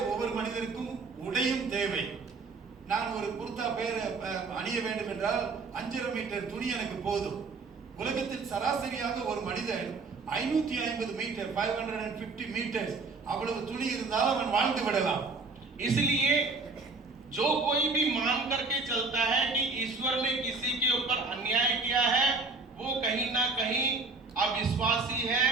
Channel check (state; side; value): quieter; left; 4.0 dB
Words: ஒவ்வொரு மனிதருக்கும் உடையும் தேவை. நான் ஒரு குர்தா அணிய வேண்டும் என்றால் 5.5 மீட்டர் துணி எனக்கு போதும். உலகத்தில் சராசரியாக ஒரு மனிதன் 550 மீட்டர் 550 மீட்டர்ஸ் அவ்வளவு துணி இருந்தால் அவன் வாழ்ந்து விடலாம். इसलिए जो कोई भी मान करके चलता है कि ईश्वर ने किसी के ऊपर अन्याय किया है, वो कहीं ना कहीं अविश्वासी है,